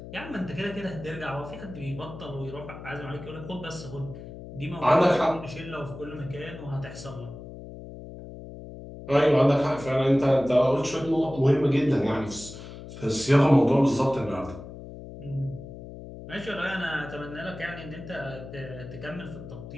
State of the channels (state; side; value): noise; left; hum, 13 dB below the sound